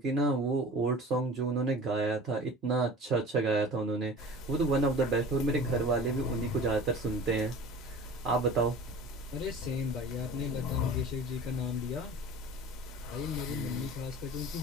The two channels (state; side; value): normal; both; correlation 0.40